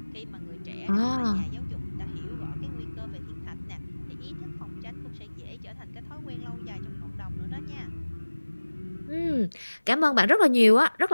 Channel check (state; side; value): inverted; both; correlation -1.00